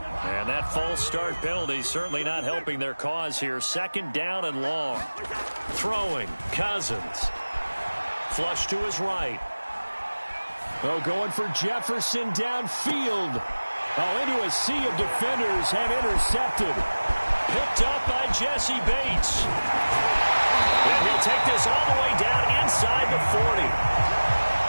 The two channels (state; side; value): inverted; both; correlation -1.00